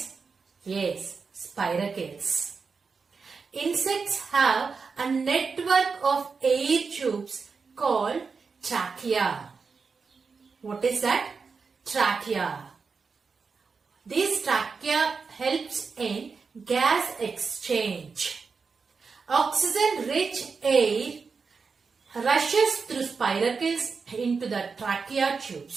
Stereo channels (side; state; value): left; quieter; 5.0 dB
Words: Yes, spiracles. Insects have a network of air tubes called trachea. What is that? Trachea. This trachea helps in gas exchange. Oxygen-rich air rushes through spiracles into the trachea